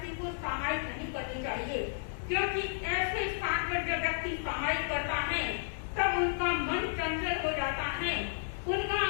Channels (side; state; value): right; silent; digital silence